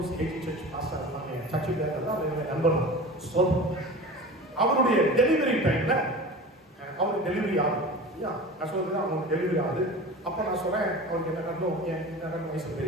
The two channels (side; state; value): both; normal; correlation 0.35